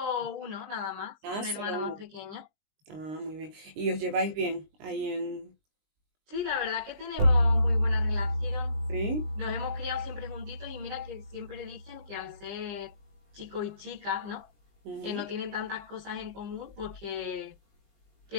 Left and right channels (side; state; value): left; late; 20 ms